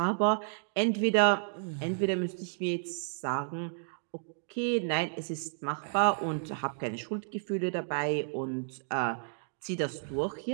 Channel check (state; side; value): silent; left; digital silence